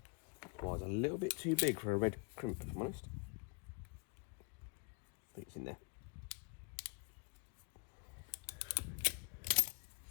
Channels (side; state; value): right; quieter; 33.2 dB